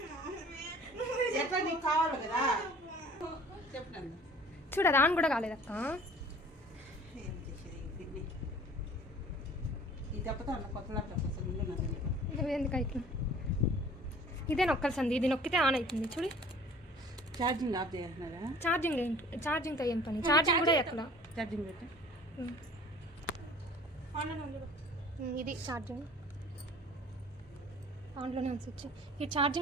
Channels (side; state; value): both; normal; correlation 0.49